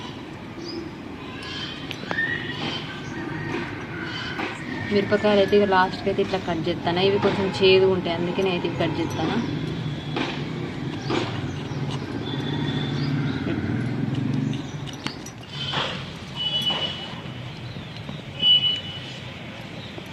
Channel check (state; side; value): identical; both; correlation 1.00